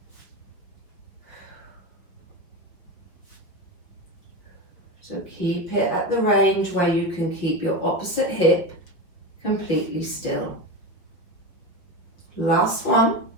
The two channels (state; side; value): late; right; 5.7 ms